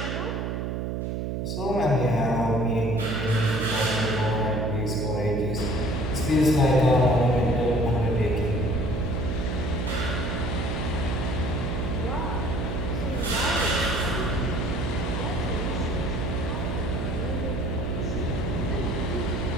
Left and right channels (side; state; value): right; noise; hum, 2 dB below the sound